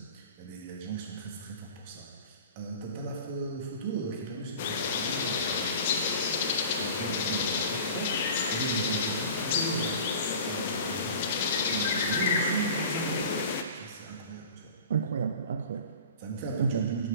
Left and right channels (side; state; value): both; inverted; correlation -0.39